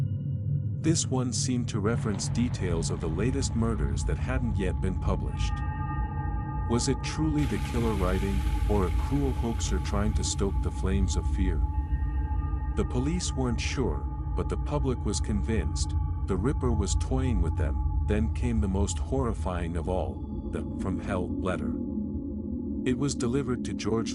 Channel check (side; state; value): both; identical; correlation 1.00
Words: This one seemed to reference details of the latest murders that hadn't yet been published. Was it truly the killer writing, or a cruel hoaxer trying to stoke the flames of fear? The police weren't sure, but the public was convinced. The Ripper was toying with them. Then came the most horrifying of all, the "From Hell" letter. It was delivered to